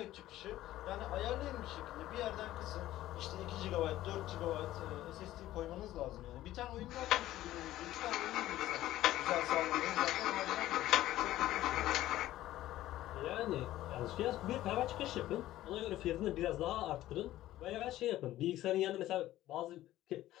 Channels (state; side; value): quieter; right; 14.6 dB